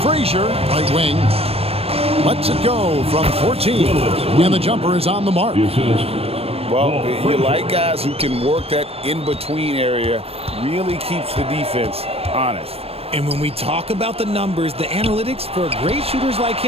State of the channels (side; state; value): left; late; 0.29 ms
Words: Frazier, right wing. Lets it go from 14, and the jumper is on the mark. Well, you like guys who can work that in-between area, really keeps the defense honest. And when we talk about the numbers, the analytics for great shooters like